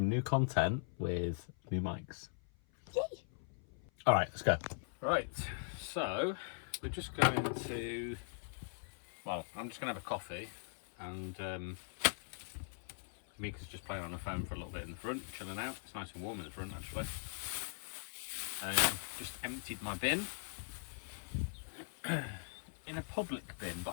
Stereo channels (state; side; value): silent; right; 51 dB below the other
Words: new content with new mics. Yay. All right, let's go. Right, so we're just going to, well, I'm just going to have a coffee, and Amika's just playing on the phone for a little bit in the front, chilling out. It's nice and warm in the front, actually. Just emptied my bin in a public bin, but